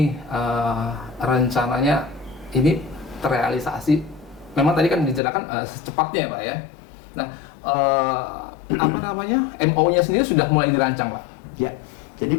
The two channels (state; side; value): drops out; right; at 5.2 s